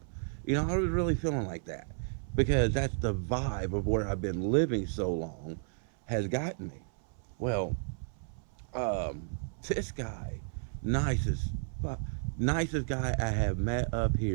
You know, I was really feeling like that because that's the vibe of where I've been living so long has gotten me. Well, um, this guy, nicest, nicest guy I have met up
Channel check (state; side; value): silent; left; 56 dB below the other